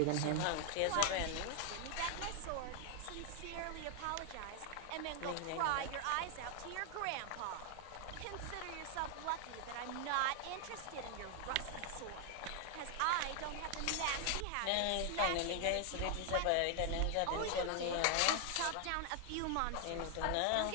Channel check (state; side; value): different; both; correlation 0.00